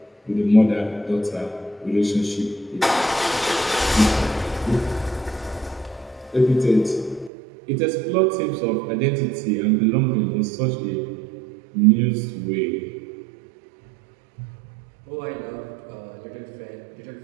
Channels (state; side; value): drops out; left; at 7.3 s